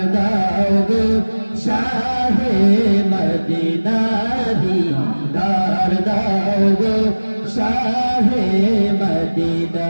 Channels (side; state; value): both; inverted; correlation -1.00